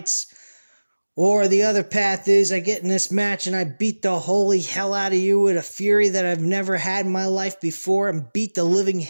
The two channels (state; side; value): inverted; both; correlation -1.00